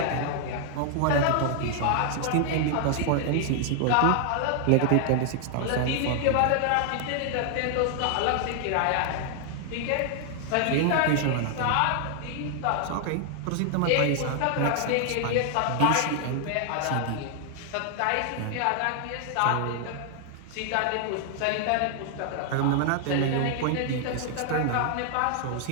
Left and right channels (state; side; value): different; both; correlation 0.00